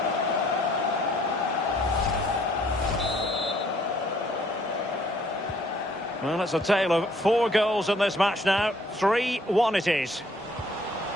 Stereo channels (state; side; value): normal; both; correlation 0.62